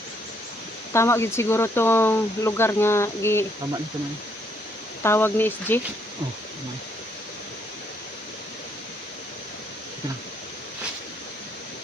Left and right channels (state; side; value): normal; both; correlation 0.71